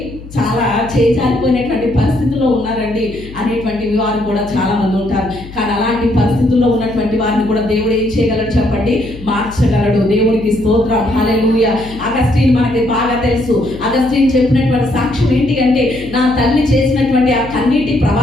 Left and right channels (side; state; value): left; noise; hum, 16 dB below the sound